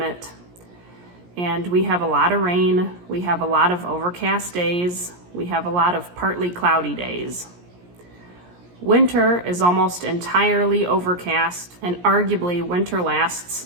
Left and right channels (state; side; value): late; left; 17 ms